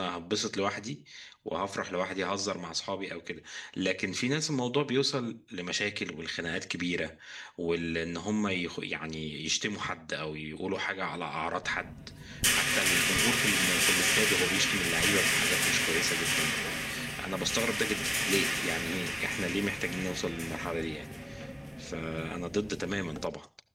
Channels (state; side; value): identical; both; correlation 1.00